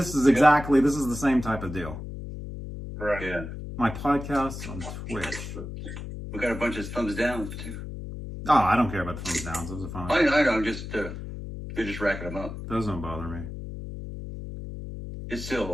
is exactly this is the same type of deal. Right. Yeah. My podcast on Twitch. We got a bunch of thumbs down too. Oh, I don't care about the thumbs downs. Those are fine. I know. Just they're just racking them up. Those don't bother me. It's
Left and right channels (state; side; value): noise; left; hum, 9 dB below the sound